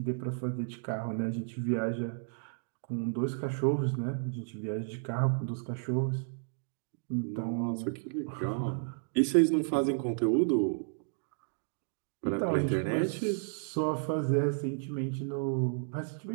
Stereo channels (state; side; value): silent; left; digital silence